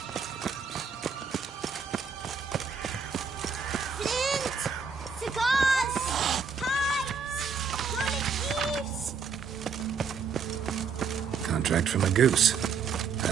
Contract from a goose.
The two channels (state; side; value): quieter; left; 5.8 dB